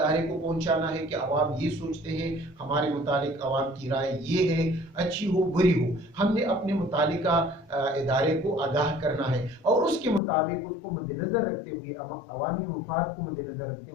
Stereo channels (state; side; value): drops out; right; at 10.2 s